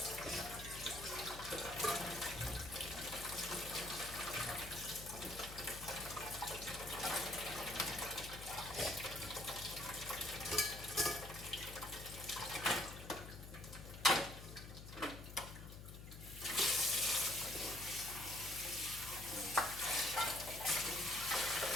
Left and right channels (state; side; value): noise; left; hum, 12 dB below the sound